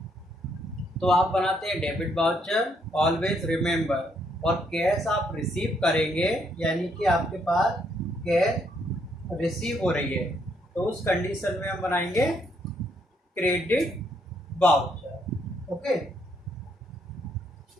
तो आप बनाते हैं डेबिट वाउचर. ऑलवेज रिमेंबर, और कैश आप रिसीव करेंगे यानी कि आपके पास कैश रिसीव हो रही है, तो उस कंडीशन में हम बनाएंगे क्रेडिट वाउचर. ओके,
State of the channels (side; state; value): both; normal; correlation 0.72